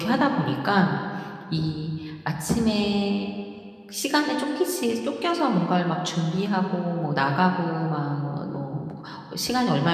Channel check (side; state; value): both; identical; correlation 1.00